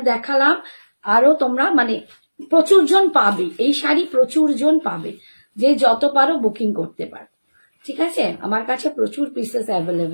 দেখালাম, আরো তোমরা মানে প্রচুর জন পাবে এই শাড়ি, প্রচুর জন পাবে, যে যত পারো বুকিং করতে পারো। ঠিক আছে, আমার কাছে প্রচুর পিসেস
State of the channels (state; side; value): inverted; both; correlation -1.00